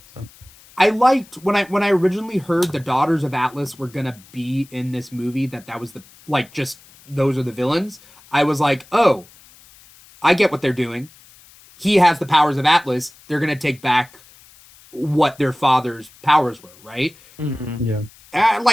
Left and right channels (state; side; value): noise; left; hiss, 25 dB below the sound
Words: So I liked when I originally heard the Daughters of Atlas were gonna be in this movie, that was the just those are the villains. I was like, oh, I get what they're doing. He has the powers of Atlas. They're gonna take back what their father's powers were, right? Mm-hmm. Yeah.